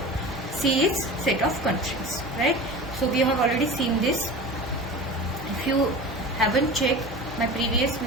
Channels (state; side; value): normal; both; correlation 0.33